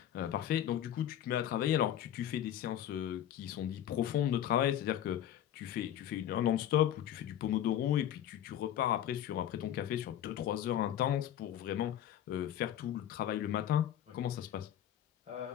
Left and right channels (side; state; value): right; quieter; 11.1 dB